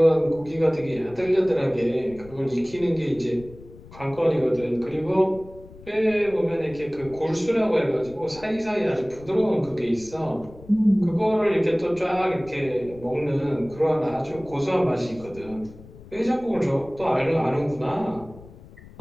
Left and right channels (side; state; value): left; noise; rumble, 20 dB below the sound